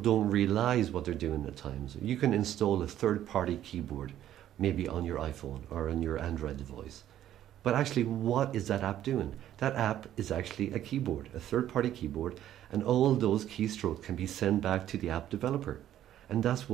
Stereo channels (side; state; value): left; quieter; 11.8 dB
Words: realize what they're doing at times. You can install a third-party keyboard, maybe on your iPhone or on your Android device. But actually, what is that app doing? That app is actually a keyboard, a third-party keyboard, and all those keystrokes can be sent back to the app developer. And that's